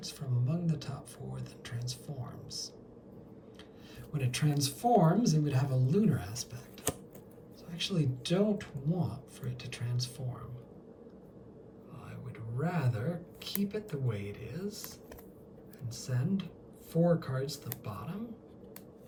from among the top 4 that transforms. When it transforms, it would have a lunar aspect. So I actually don't want for it to transform. I would rather keep it the way it is and send 4 cards to the bottom.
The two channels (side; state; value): both; identical; correlation 1.00